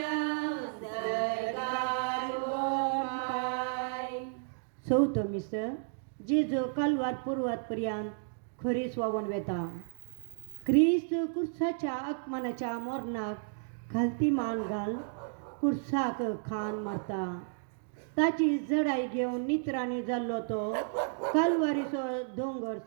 सरकार ओमाय. चौथं मिसळ जेजू कालवार पूर्वात पर्यंत खरी स्वावन वेता. क्रिस्त कुर्साच्या आगमनाच्या मोरणाक घालती मान घाल कुर्साक खान मरता. ताची जडाई घेवन नित्रांनी जाल्लो तो कालवारीचो दोंगर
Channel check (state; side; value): silent; left; digital silence